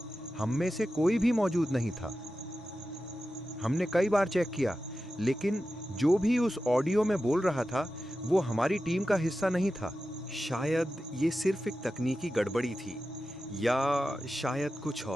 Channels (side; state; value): both; normal; correlation 0.93